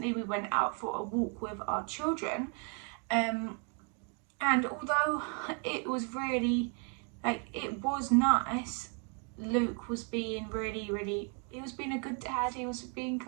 we went out for a walk with our children, and although it was really, it was nice, Luke was being he was being a good dad, he was being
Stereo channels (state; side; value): quieter; left; 39.5 dB